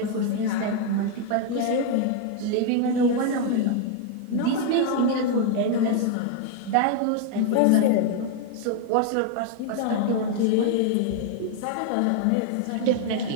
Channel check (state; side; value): different; both; correlation 0.00